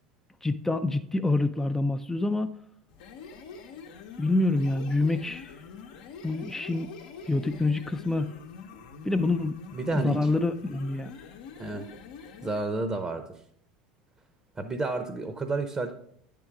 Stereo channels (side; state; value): both; normal; correlation 0.82